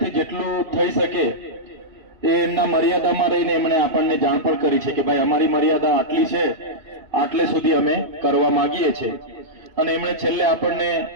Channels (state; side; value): late; left; 2.8 ms